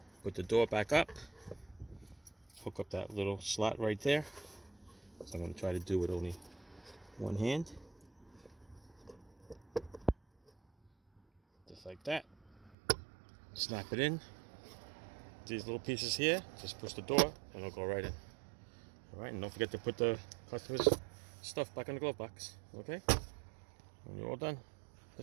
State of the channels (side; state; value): left; drops out; at 12.8 s